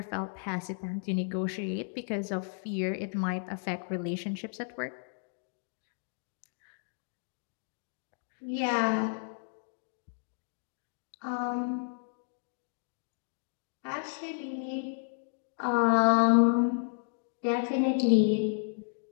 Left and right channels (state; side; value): silent; right; digital silence